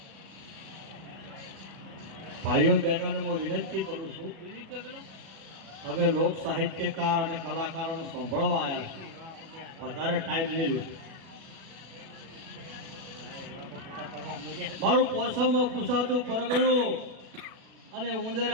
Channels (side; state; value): left; late; 36 ms